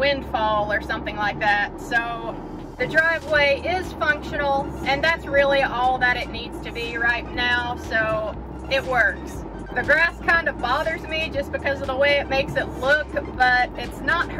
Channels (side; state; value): both; identical; correlation 1.00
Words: or something like that. So the driveway is functional, and that's really all that it needs to be right now, so it works. The grass kind of bothers me just because of the way it makes it look, but it's not